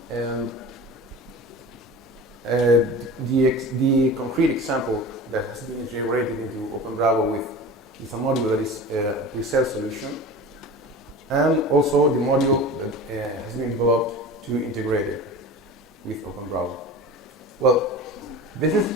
and the concrete example that has been integrated into Openbravo with a module that is a pre-sale solution, and also the module that has been developed to integrate it with Openbravo. Well, this is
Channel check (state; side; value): normal; both; correlation 0.34